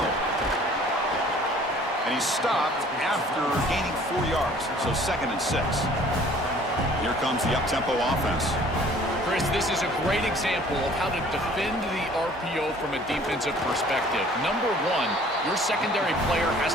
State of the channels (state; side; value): normal; both; correlation 0.53